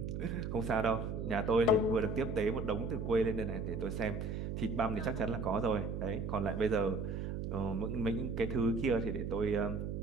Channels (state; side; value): noise; right; hum, 4 dB below the sound